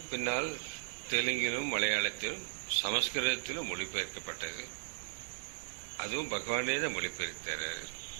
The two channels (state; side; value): silent; left; digital silence